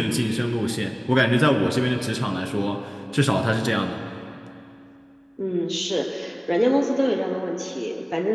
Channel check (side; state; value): both; identical; correlation 1.00